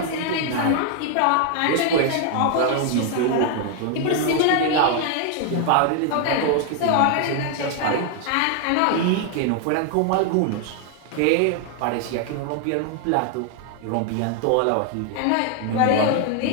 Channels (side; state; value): both; different; correlation 0.00